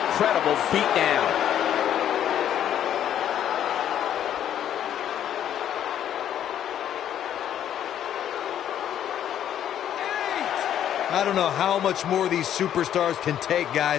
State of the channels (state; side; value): quieter; right; 10.4 dB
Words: beatdown. I don't know how much more these superstars can take,